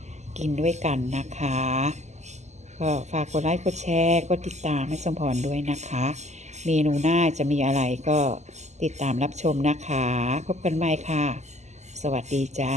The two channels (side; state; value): left; late; 0.33 ms